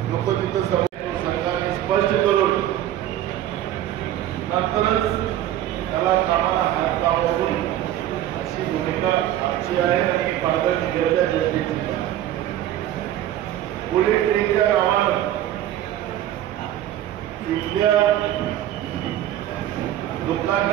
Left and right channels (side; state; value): left; quieter; 12.5 dB